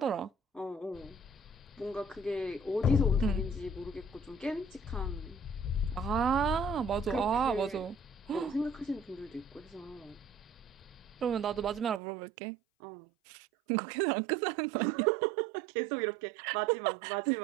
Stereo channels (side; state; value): left; drops out; at 12.0 s